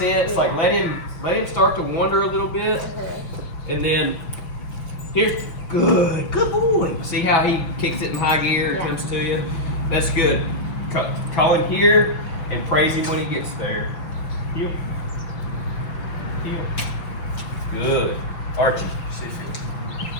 Like let him start to wander a little bit, and then here, good boy. See how he kicks it in high gear and comes to you? That's good. Call him here and praise him when he gets there. Heel. Good. Archie.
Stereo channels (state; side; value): late; right; 6.0 ms